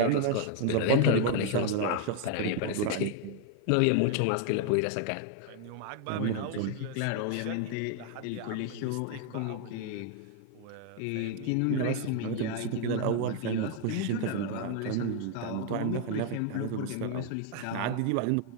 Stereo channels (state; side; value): different; both; correlation 0.00